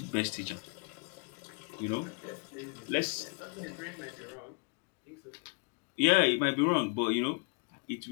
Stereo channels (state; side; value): quieter; right; 35.7 dB